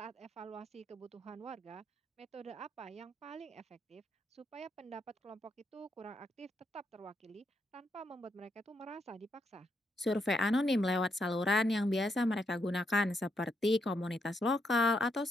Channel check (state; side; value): normal; both; correlation 0.79